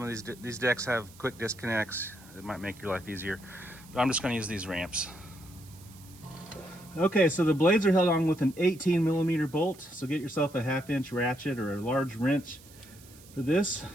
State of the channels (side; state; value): right; noise; hiss, 23 dB below the sound